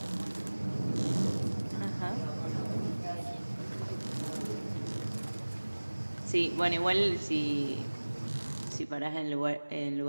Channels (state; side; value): inverted; both; correlation -1.00